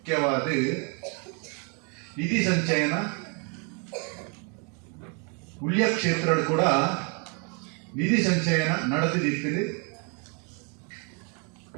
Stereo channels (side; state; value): left; quieter; 36.1 dB